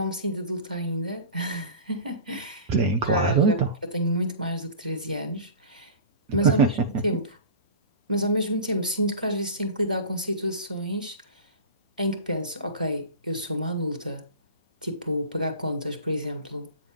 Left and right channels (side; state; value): both; inverted; correlation -0.34